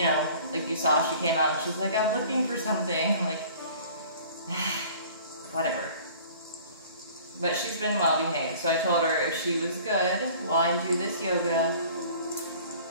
know, like you saw, she came out and she's like, I'm looking for something. I'm like, whatever. But she's been well behaved, so I told her if she was good while I do this yoga,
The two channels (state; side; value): inverted; both; correlation -0.48